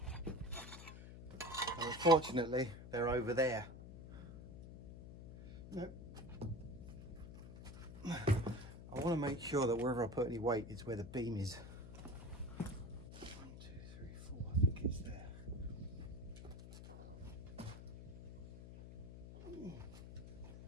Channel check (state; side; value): noise; left; hum, 12 dB below the sound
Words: And unfortunately, they're over there. No. I want to make sure that wherever I put any weight is where the beam is. 1, 2, 3, 4, I think it's there.